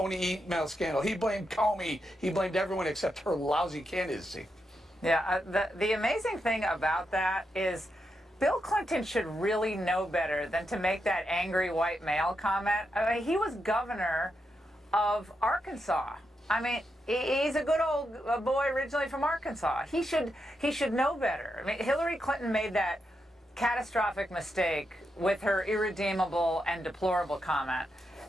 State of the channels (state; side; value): normal; both; correlation 0.84